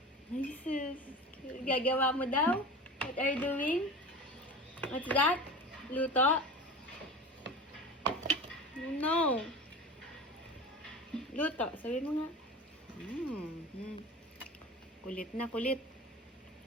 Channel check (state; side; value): normal; both; correlation 0.32